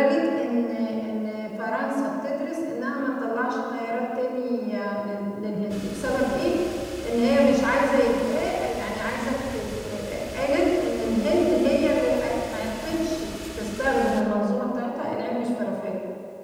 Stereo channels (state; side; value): identical; both; correlation 1.00